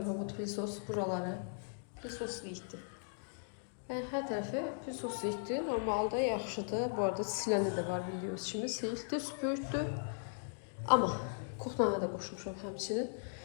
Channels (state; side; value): silent; right; digital silence